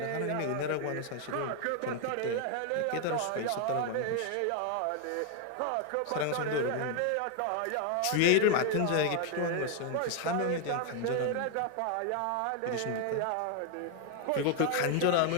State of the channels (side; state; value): both; different; correlation 0.00